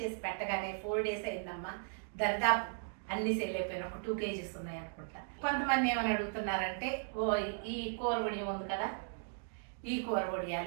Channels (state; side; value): silent; left; digital silence